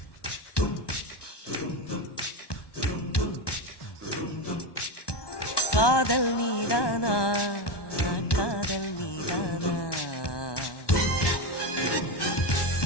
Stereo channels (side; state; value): right; late; 1.2 ms